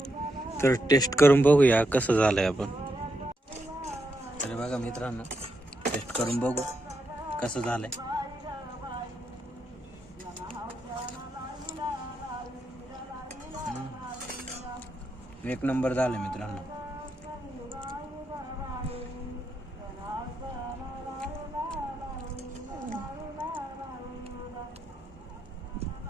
तर टेस्ट करून बघूया कसं झालंय आपण. तर बघा मित्रांनो टेस्ट करून बघू कसं झालंय. एक नंबर झालं मित्रांनो.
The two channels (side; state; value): both; normal; correlation 0.82